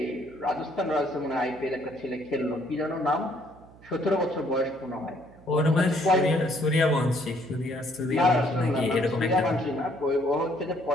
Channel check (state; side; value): noise; right; hum, 24 dB below the sound